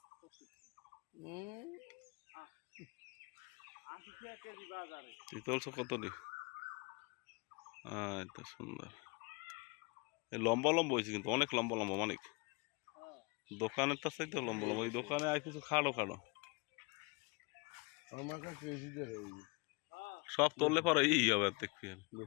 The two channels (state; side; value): quieter; right; 29.5 dB